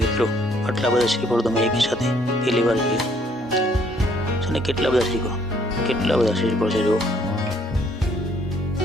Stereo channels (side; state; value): both; normal; correlation 0.65